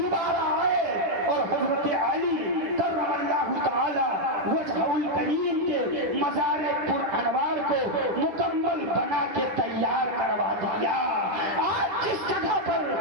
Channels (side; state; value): left; late; 10 ms